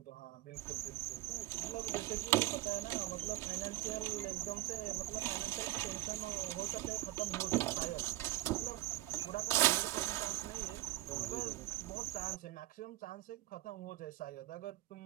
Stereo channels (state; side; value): quieter; left; 17.4 dB